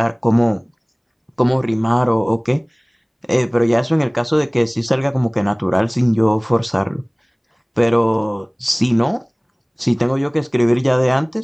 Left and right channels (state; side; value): identical; both; correlation 1.00